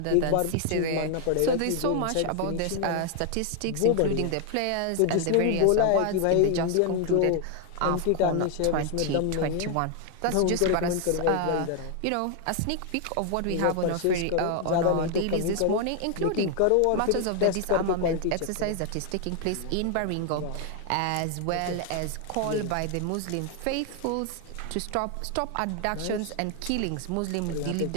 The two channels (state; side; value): different; both; correlation 0.00